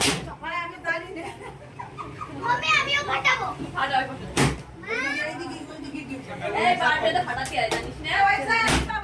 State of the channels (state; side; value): identical; both; correlation 1.00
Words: মানে আমি জানি না মম্মি আমিও ফাটাবো ফাটা ওই পাশে। এইদিকে ওইদিকে কি এই বার্থডে তো ফাটাতে হয় জানিস না? পয়সা একটা